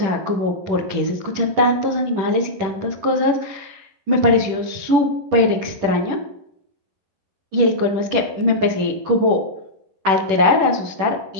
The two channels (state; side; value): late; left; 10 ms